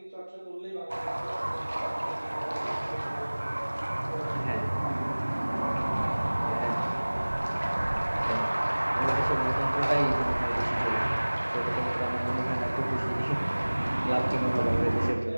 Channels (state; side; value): inverted; both; correlation -1.00